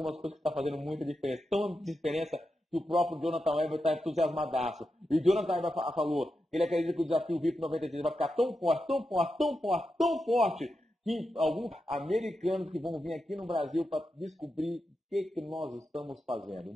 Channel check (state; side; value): normal; both; correlation 0.88